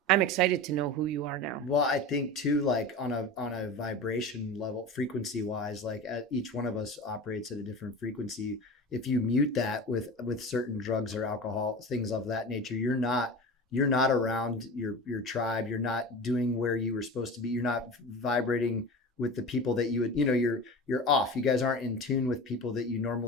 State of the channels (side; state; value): both; normal; correlation 0.31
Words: I'm excited to know who you are now. Well, I think too, like on a vibration level, frequency wise, like each one of us operates at a different frequency. If you mute that with certain drugs or alcohol, things of that nature, you're not around your tribe. You're not doing where you were supposed to be. You're not vibrating with the people that you would, you're off. You guys aren't in tune with people that you